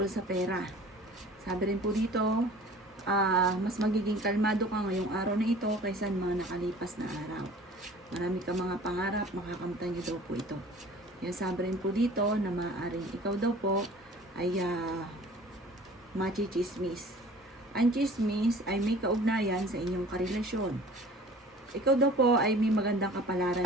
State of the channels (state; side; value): normal; both; correlation 0.46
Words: sa pera. Sabi rin po dito, mas magiging kalmado ka ngayong araw na ito kaysa mga nakalipas na araw. Marami ka mga pangarap, makakamtan niyo daw po ito. Kaya sabi rin po dito na maaaring ikaw daw po ay machichismis. Ang chismis ay may kaugnayan sa inyong karelasyon. Ikaw daw po ay may magandang kapalaran